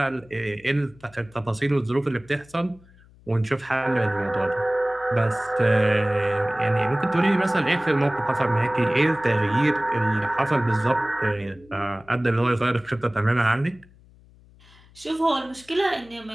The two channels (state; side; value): noise; left; hum, 26 dB below the sound